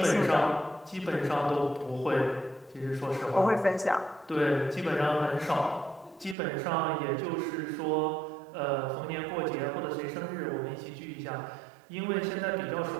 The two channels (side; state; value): left; drops out; at 6.4 s